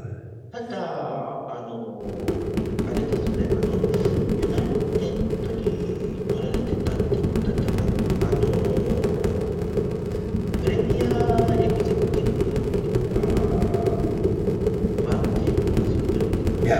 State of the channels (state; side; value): identical; both; correlation 1.00